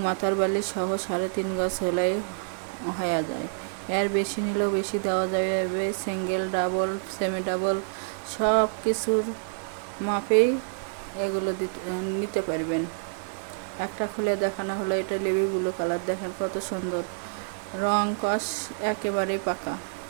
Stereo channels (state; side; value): silent; left; 60 dB below the other